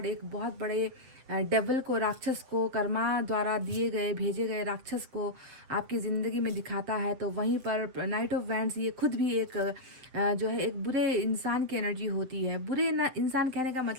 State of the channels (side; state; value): left; late; 7.8 ms